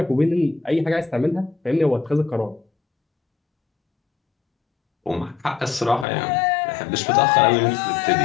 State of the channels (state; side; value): drops out; right; at 6.1 s